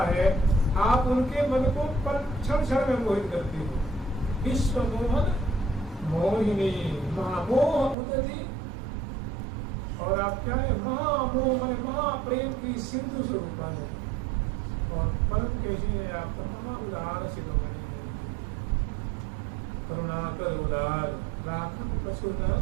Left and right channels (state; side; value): drops out; left; at 8.0 s